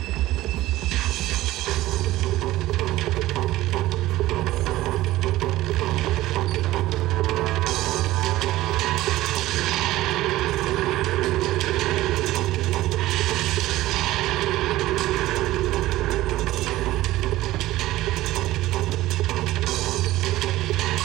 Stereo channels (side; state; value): left; quieter; 16.4 dB